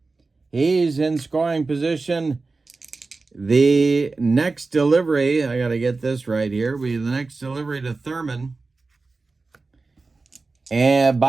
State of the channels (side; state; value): left; quieter; 3.8 dB